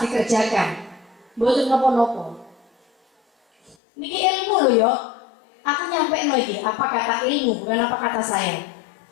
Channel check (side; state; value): right; drops out; at 3.8 s